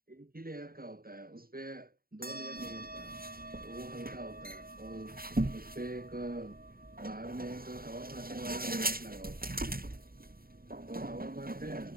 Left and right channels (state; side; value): late; left; 0.43 ms